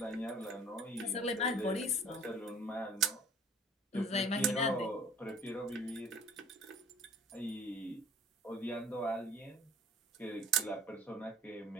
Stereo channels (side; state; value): both; normal; correlation 0.49